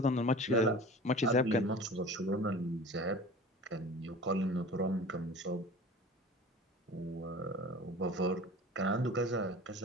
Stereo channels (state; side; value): normal; both; correlation 0.39